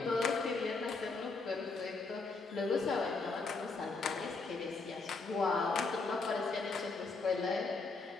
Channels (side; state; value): right; quieter; 3.9 dB